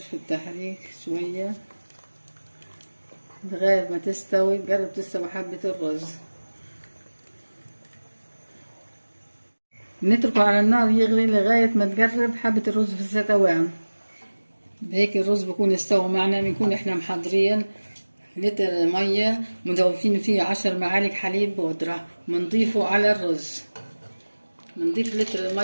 التحريك شوية لغاية ما تستوي، تقرب تستوي حبة الرز. نتركه على النار يغلي لغاية ما تقرب حبة الرز في الستوان. بهيك الرز بكون استوى معنا. بنكون احنا محضرين لتر مية مضوفين فيه 10 معالق حليب بودرة، بنضيفه على الرز. بنضيف لتر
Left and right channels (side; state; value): both; inverted; correlation -1.00